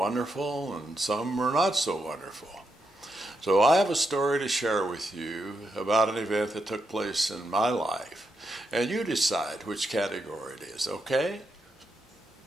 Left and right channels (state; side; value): normal; both; correlation 0.83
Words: and some were not so wonderful. So I have a story to share with you about an event that took place in my life. And you decide which category it is, okay?